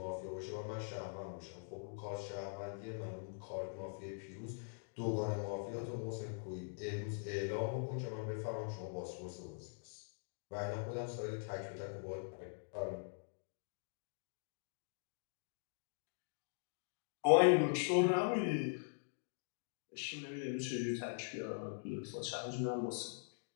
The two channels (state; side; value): silent; right; digital silence